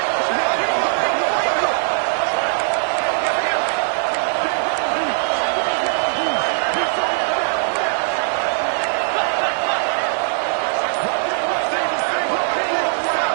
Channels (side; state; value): left; silent; digital silence